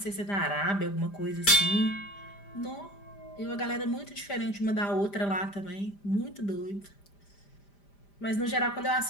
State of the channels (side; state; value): right; late; 5.0 ms